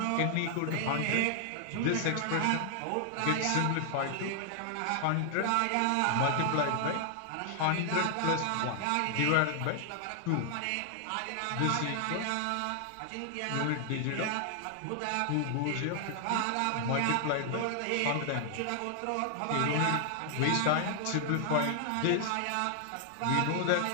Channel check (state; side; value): different; both; correlation 0.00